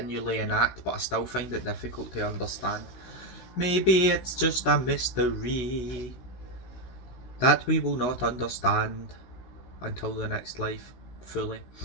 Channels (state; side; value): late; right; 16 ms